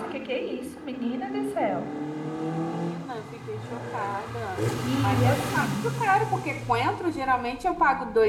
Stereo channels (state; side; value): identical; both; correlation 1.00